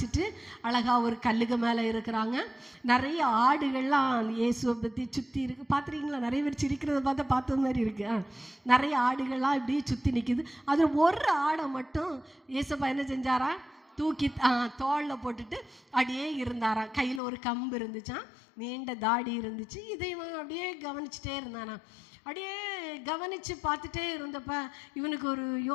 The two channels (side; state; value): right; drops out; at 17.2 s